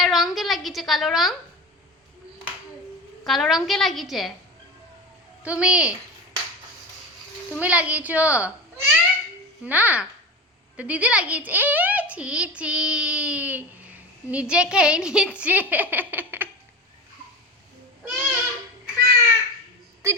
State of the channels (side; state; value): both; normal; correlation 0.27